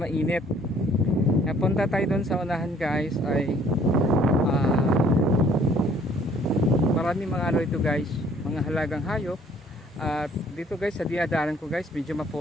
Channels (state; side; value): normal; both; correlation 0.59